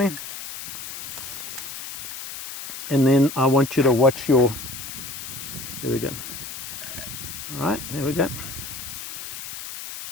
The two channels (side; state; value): left; noise; hiss, 9 dB below the sound